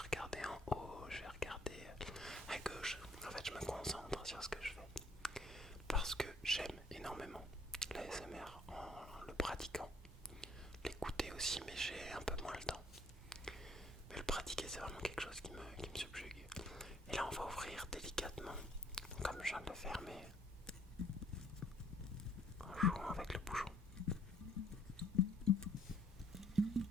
en haut, je vais regarder à gauche. En fait, je me concentre sur ce que je fais parce que j'aime énormément l'ASMR en le pratiquant. L'écouter aussi, mais j'ai un peu moins le temps. Mais le pratiquer, c'est vraiment quelque chose qui me subjugue. Et là, on va ouvrir délicatement, donc, comme je viens de le faire, mais en jouant avec le bouchon.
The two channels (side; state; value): both; normal; correlation 0.62